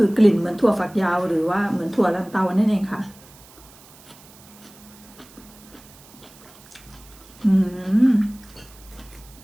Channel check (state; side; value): noise; right; hiss, 23 dB below the sound